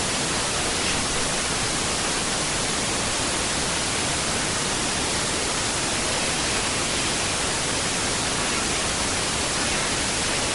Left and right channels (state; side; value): identical; both; correlation 1.00